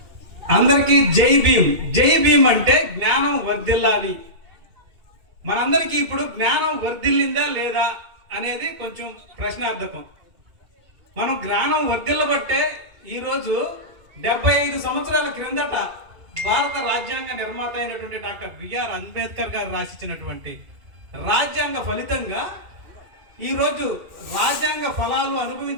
అందరికీ జై భీమ్. జై భీమ్ అంటే జ్ఞానం వర్ధిల్లాలి. మనందరికీ ఇప్పుడు జ్ఞానం వర్ధిల్లిందా లేదా అనేది కొంచెం ప్రశ్నార్థకం. మనం జ్ఞానం వర్ధిల్లబట్టే ఈరోజు 75 సంవత్సరాల క్రిందట భారత రాజ్యాంగ నిర్మాత అయినటువంటి డాక్టర్ బిఆర్ అంబేద్కర్ గారు రాసిచ్చినటువంటి రాజ్యాంగ ఫలితంగా ఈరోజు రాజ్యాంగ ఫలాలు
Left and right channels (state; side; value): late; left; 2.4 ms